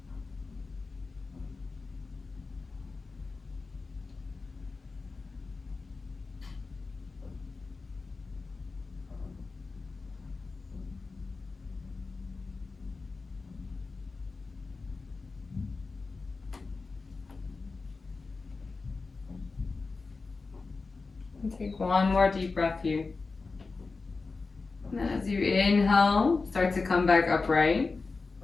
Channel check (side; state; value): right; quieter; 4.1 dB